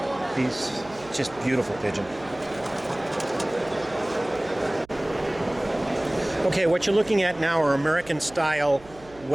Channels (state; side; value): noise; right; hum, 23 dB below the sound